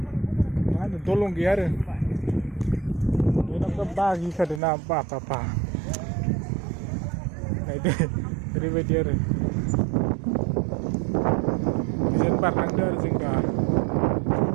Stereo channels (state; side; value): drops out; left; at 4.6 s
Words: मा होनो दलं गैया आरो बेनाव बागिखादों ना बा नायदो ओरैबायदि आरो बिजों बारलांदो आरो जों दा